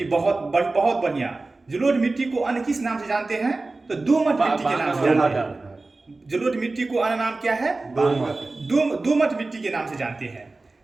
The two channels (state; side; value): quieter; left; 3.4 dB